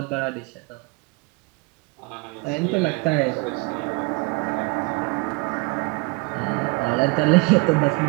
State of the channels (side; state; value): left; quieter; 27.6 dB